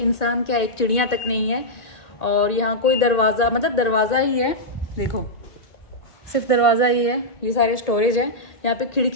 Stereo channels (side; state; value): right; late; 1.9 ms